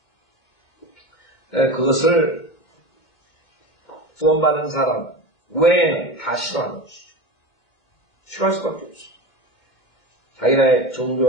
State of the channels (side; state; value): right; late; 2.2 ms